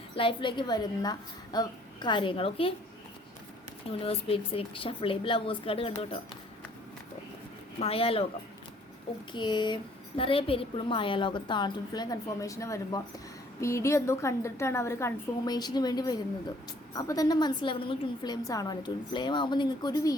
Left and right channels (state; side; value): normal; both; correlation 0.60